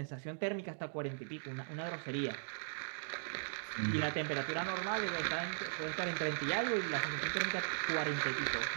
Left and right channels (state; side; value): silent; left; digital silence